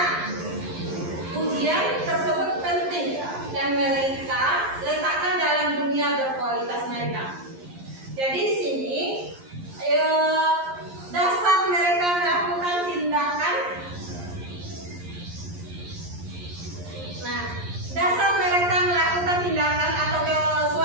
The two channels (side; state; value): left; late; 11 ms